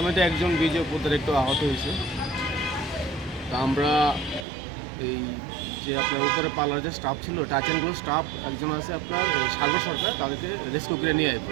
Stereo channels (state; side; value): drops out; left; at 4.5 s